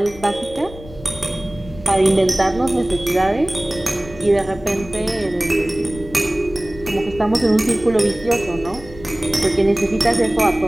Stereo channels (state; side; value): noise; left; rumble, 16 dB below the sound